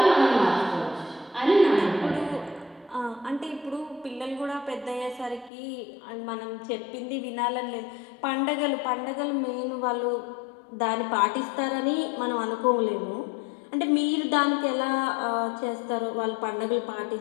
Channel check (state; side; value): drops out; right; at 5.5 s